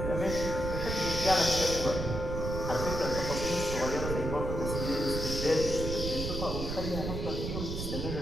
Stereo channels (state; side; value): noise; right; rumble, 3 dB below the sound